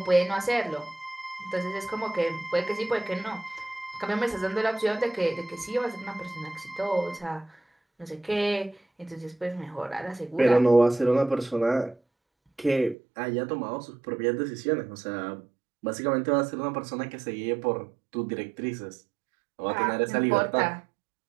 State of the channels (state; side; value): drops out; left; at 13.0 s